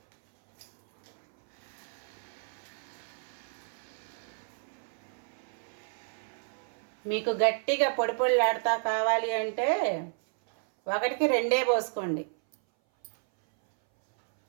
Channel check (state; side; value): silent; left; 57 dB below the other